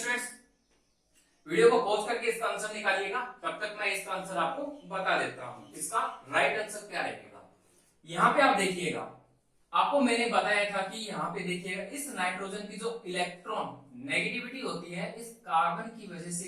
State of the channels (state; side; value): identical; both; correlation 1.00